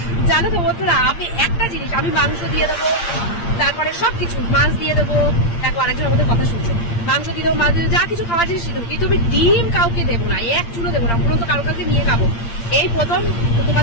জানো তো বন্ধুরা, আমি একটা জিনিস, আমি মাংস দিয়ে দেবো, তারপরে সবকিছু, মাছ দিয়ে দেবো। দেখো আরেকজন আমাদের কথা শুনছে, মাংস দিয়ে দেবো, মাছ দিয়ে দেবো, যা কিছু খাবার জিনিস দিয়ে দেবো, কিন্তু আমি ডিম কাউকে দেবো না, এক চুলো দেবো না। পুরো তো কারোর কাছে নিয়ে খাবো। এই প্রথম তোমার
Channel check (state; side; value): late; right; 8.7 ms